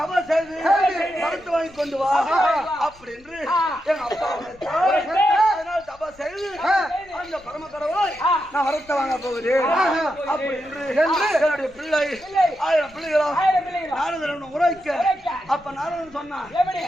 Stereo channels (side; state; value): left; noise; rumble, 26 dB below the sound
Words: செய்து மறுத்து வாங்கி கொண்டு வா அப்படி என்று எங்க அப்பா அதனால் தபா செய்து அந்த பரம கடவுளை நான் வரத்த வாங்க போகிறேன் அப்படி என்று என்னுடைய பிள்ளை 1000 பிள்ளைகளா நாரதன் உரைக்க அப்ப நாரதன் சொன்னான்